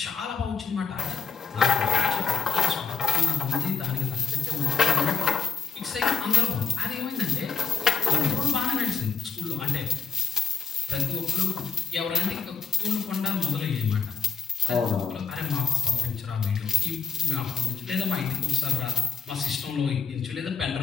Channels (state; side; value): quieter; right; 5.8 dB